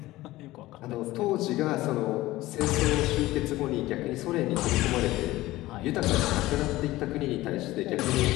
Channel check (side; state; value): right; quieter; 17.5 dB